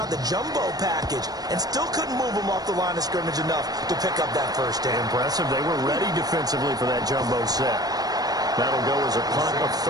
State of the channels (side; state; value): left; late; 0.19 ms